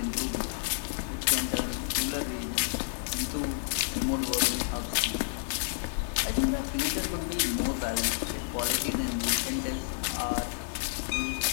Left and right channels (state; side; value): silent; right; digital silence